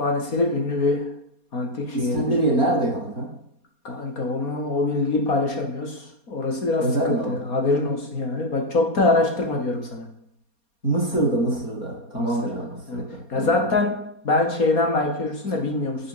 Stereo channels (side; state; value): right; late; 4.3 ms